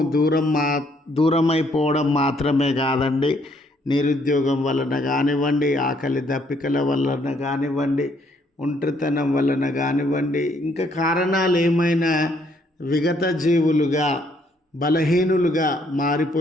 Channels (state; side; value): normal; both; correlation 0.68